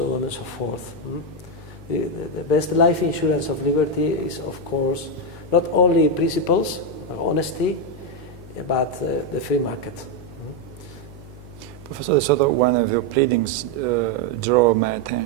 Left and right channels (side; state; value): left; noise; hum, 17 dB below the sound